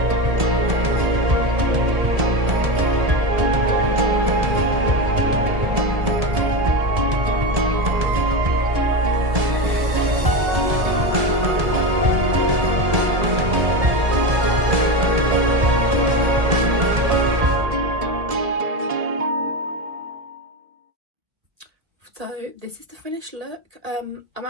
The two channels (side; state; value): left; late; 1.7 ms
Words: So this is the finished look. I'm